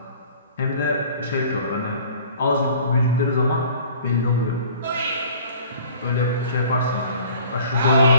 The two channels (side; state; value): both; inverted; correlation -0.49